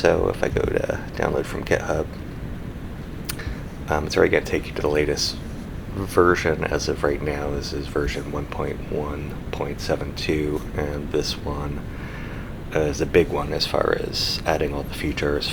if I go to download from GitHub, it's already going to take you to the latest version as of right now. This is version 1.1.72, and this one is a big one as far as adding all the features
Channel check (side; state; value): both; identical; correlation 1.00